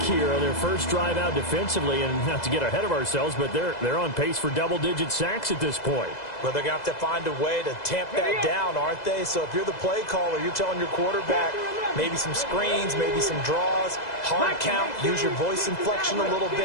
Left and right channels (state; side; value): late; right; 2.0 ms